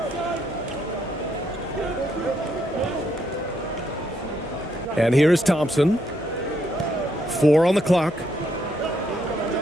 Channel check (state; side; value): normal; both; correlation 0.75